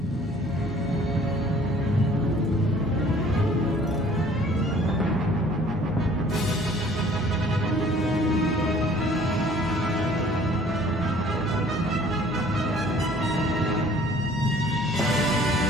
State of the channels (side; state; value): both; normal; correlation 0.54